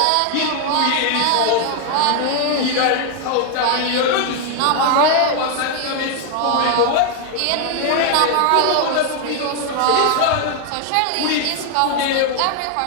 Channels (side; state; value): both; different; correlation 0.00